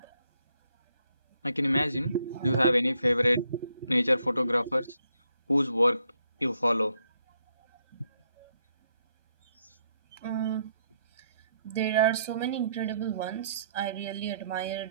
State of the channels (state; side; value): inverted; both; correlation -0.74